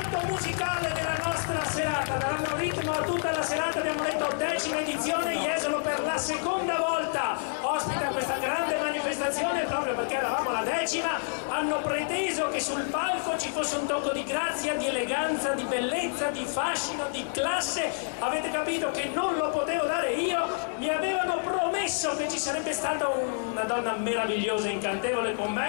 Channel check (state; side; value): silent; right; 59 dB below the other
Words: musicale della nostra serata. Daranno ritmo a tutta la serata. Abbiamo detto 10ª edizione, Jesolo per la seconda volta ospita questa grande manifestazione proprio perché eravamo alla 10ª. Hanno preteso che sul palco ci fosse un tocco di grazia, di eleganza, di bellezza, di fascino, di classe. Avete capito che non lo potevo dare io. Mi avevano promesso che ci sarebbe stata una donna meravigliosa, incantevole con